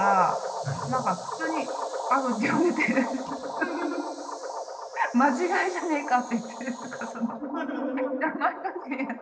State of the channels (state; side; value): identical; both; correlation 1.00